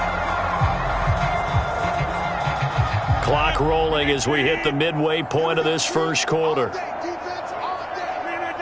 Clock rolling as we hit the midway point of this first quarter.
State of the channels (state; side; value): identical; both; correlation 1.00